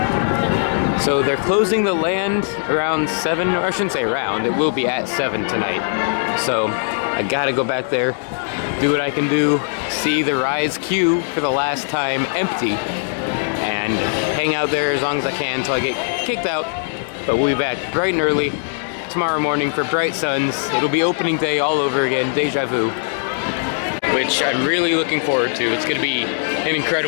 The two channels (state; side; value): silent; right; digital silence